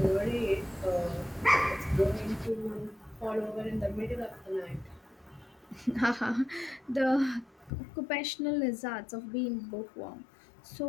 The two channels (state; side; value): drops out; right; at 7.7 s